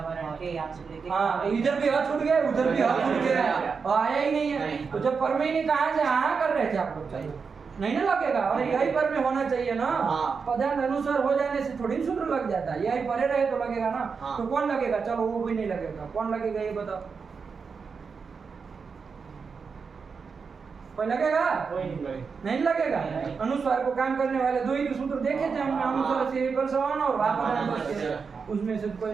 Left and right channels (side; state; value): left; quieter; 5.4 dB